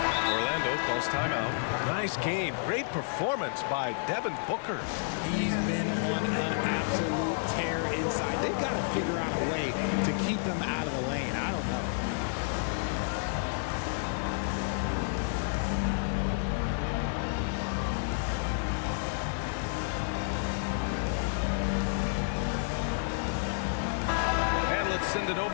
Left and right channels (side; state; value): right; silent; 58 dB below the other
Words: Orlando calls timeout. Nice game. Great performance by Devin Booker. He's been on an absolute tear inside. They've got to figure out a way to keep him out of the lane. I don't know. Let's send it